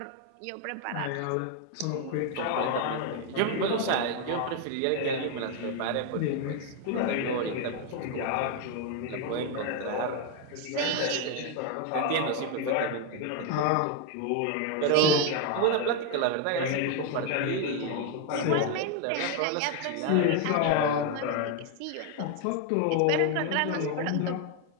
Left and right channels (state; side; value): different; both; correlation 0.01